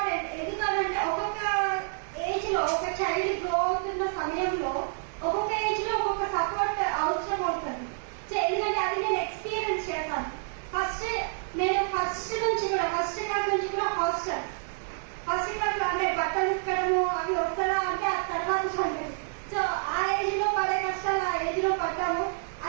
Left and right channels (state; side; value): silent; left; digital silence